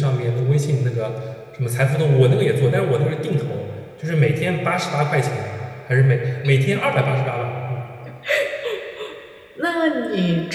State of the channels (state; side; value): identical; both; correlation 1.00